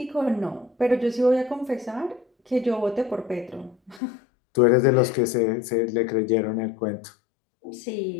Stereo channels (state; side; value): drops out; right; at 4.0 s